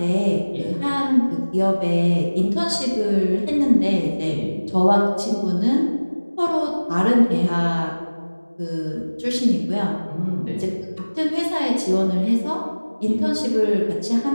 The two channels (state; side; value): inverted; both; correlation -1.00